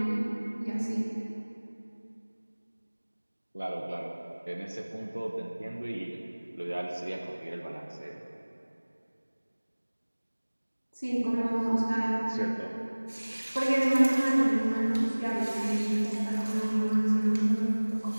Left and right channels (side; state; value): both; inverted; correlation -1.00